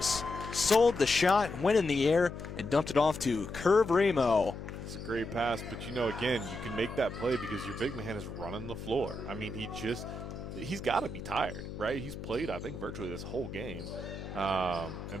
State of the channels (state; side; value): noise; left; hum, 9 dB below the sound